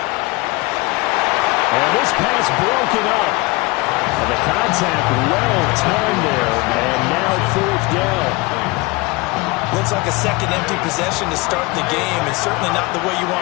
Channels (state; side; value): quieter; right; 24.0 dB